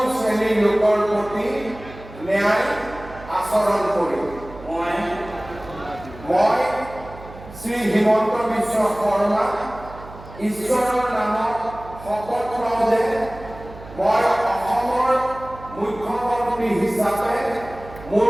শ্ৰেণীৰ লোকৰ প্ৰতি ন্যায় আচৰণ কৰিম। মই শ্ৰী হিমন্ত বিশ্ব শৰ্মা ঈশ্বৰৰ নামত শপত লওঁ যে মই অসমৰ মুখ্যমন্ত্ৰী হিচাপে মোৰ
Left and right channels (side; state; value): right; noise; hum, 16 dB below the sound